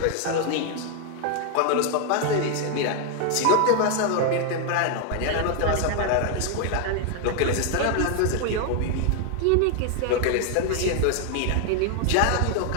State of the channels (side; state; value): both; different; correlation 0.00